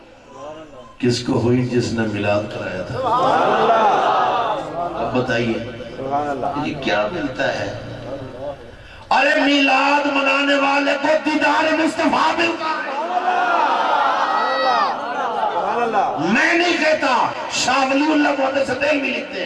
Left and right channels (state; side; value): identical; both; correlation 1.00